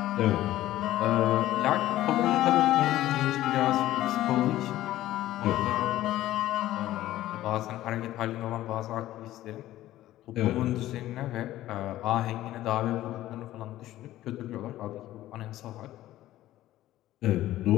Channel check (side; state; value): right; quieter; 14.7 dB